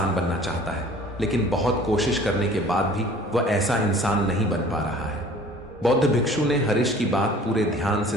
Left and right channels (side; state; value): both; normal; correlation 0.49